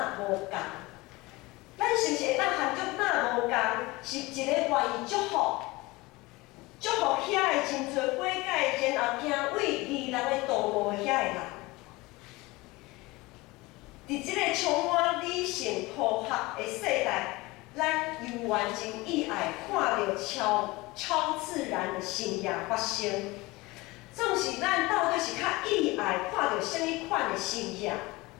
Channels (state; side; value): quieter; right; 22.0 dB